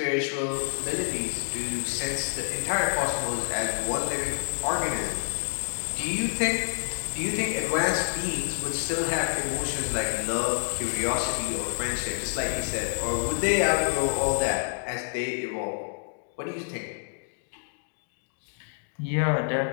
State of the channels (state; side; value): silent; right; digital silence